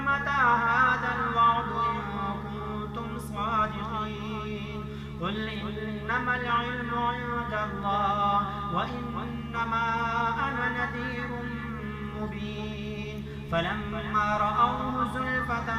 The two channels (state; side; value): identical; both; correlation 1.00